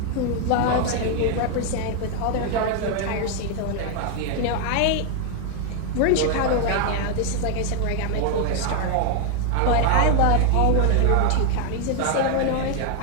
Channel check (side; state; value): both; different; correlation 0.00